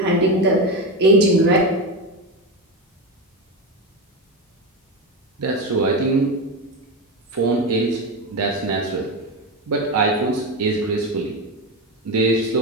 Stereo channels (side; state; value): both; normal; correlation 0.17